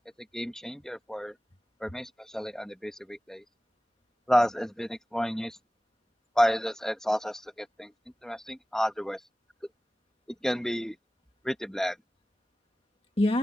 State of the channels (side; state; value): both; normal; correlation 0.96